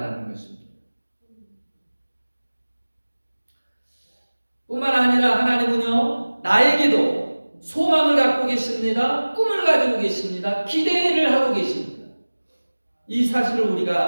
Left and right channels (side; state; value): both; inverted; correlation -1.00